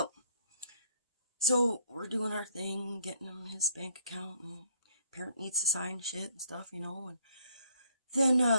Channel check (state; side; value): inverted; both; correlation -0.68